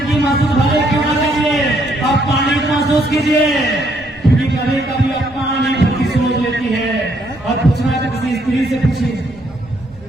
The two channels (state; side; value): noise; right; rumble, 24 dB below the sound